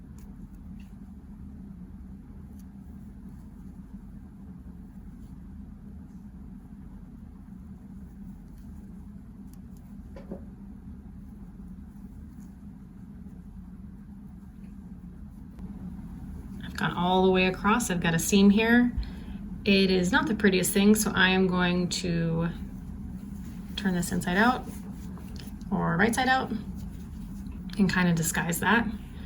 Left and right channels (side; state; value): both; identical; correlation 1.00